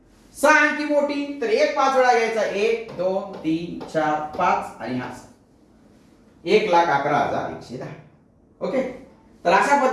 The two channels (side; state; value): both; identical; correlation 1.00